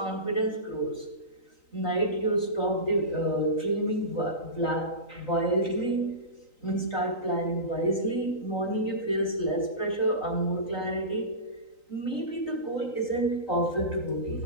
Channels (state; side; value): late; right; 3.9 ms